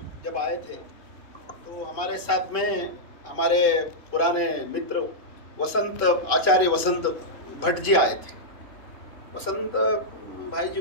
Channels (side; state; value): right; late; 3.1 ms